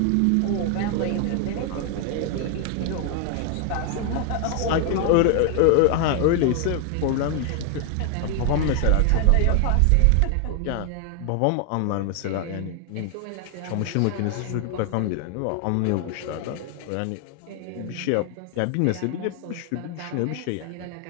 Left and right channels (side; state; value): both; different; correlation 0.00